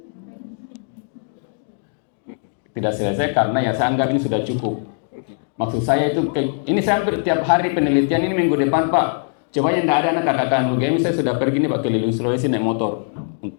Tidak selesai karena ya saya anggap ini sudah cukup. Maksud saya itu, ini saya hampir tiap hari penelitian ini minggu depan Pak. Coba yang tidak ada anak kakak UGM, saya sudah pergi nih Pak keliling Sulawesi naik motor.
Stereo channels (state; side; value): silent; right; 65 dB below the other